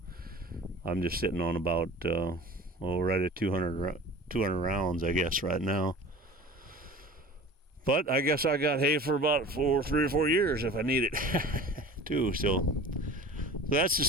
I'm just sitting on about, right at 200 rounds, I guess, right now. But I guess I got hay for about 3 or 4 years if I need it, too. So that's the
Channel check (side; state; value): both; normal; correlation 0.40